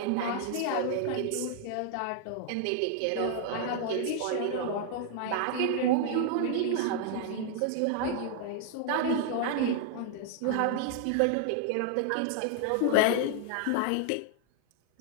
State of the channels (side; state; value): both; different; correlation 0.00